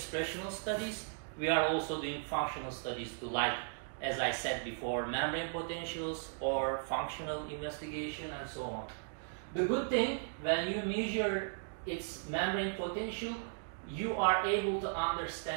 studies, we are also doing functional studies to, like, as I said before, membrane potentials or functional investigation and so on. The good thing, when you measure its membrane potential, you are able to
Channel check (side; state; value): left; silent; digital silence